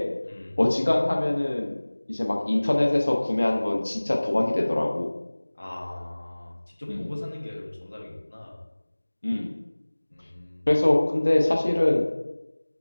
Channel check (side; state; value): both; inverted; correlation -1.00